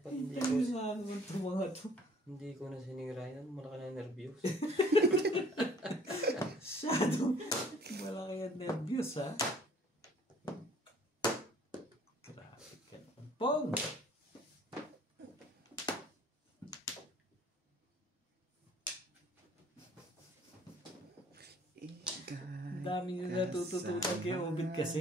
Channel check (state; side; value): normal; both; correlation 0.55